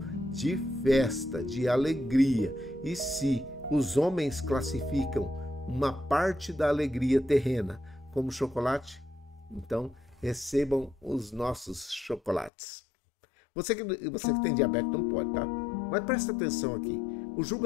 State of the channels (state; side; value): drops out; right; at 12.5 s